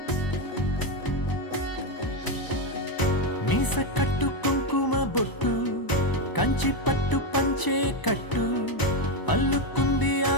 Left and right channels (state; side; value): late; right; 1.0 ms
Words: మీస కట్టు కుంకుమ బొట్టు కంచి పట్టు పంచే కట్టు అల్లుకుంది